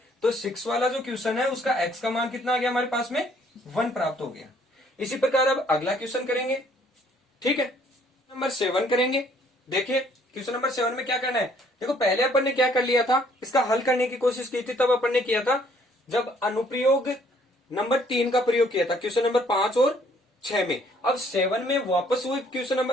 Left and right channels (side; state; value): both; normal; correlation 0.63